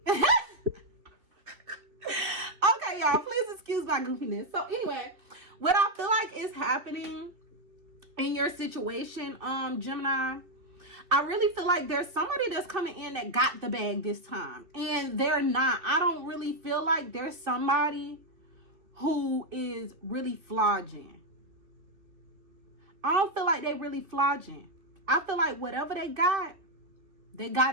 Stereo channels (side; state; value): left; late; 2.7 ms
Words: Okay, y'all, please excuse my goofiness. So anyway, what I feel like is happening in your situation, Gemini, I really feel like there's somebody that's coming in that got the bag this time, and they're not. I don't really feel like there's somebody who is really flogging. I don't feel like they really flogging. I feel like whatever they got